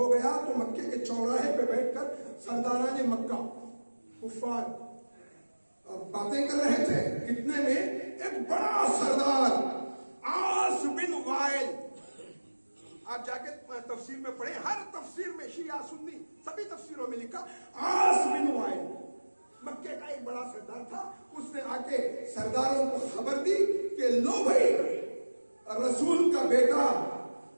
گیا تو مکے کے چوراہے پہ بیٹھ کر سرداران مکہ کفار باتیں کر رہے تھے. اتنے میں ایک بڑا سردار عاص بن آپ جا کے تفسیر میں پڑھیں، ہر تفسیر میں شیعہ سنی سبھی تفسیروں میں لکھا عاص بن وائل مکے کا ایک بڑا سردار تھا، اس نے آ کے سرداروں کو خبر دی کہ لو بھائی رسول کا بیٹا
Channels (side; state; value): both; inverted; correlation -1.00